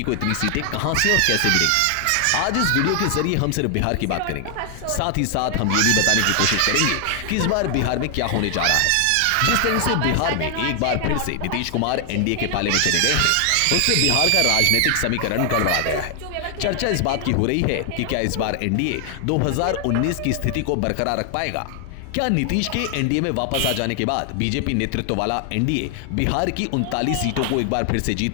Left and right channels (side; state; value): both; different; correlation 0.00